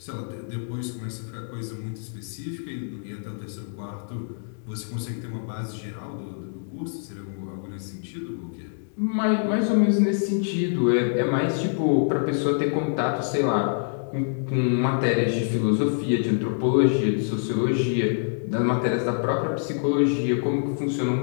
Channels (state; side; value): silent; right; digital silence